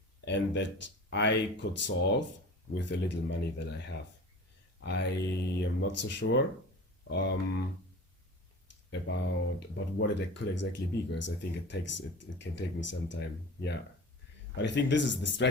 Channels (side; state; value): both; normal; correlation 0.37